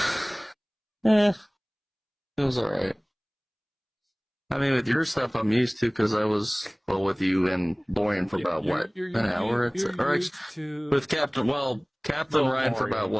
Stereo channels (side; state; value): both; identical; correlation 1.00